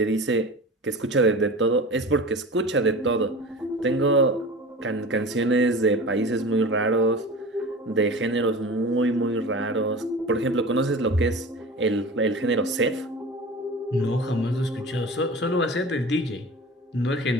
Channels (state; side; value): normal; both; correlation 0.35